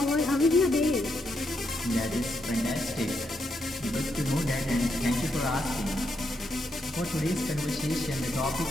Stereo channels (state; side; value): normal; both; correlation 0.80